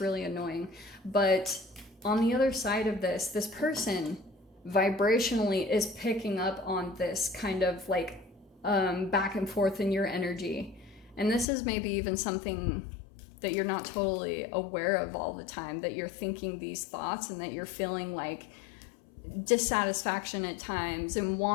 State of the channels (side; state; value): right; drops out; at 11.5 s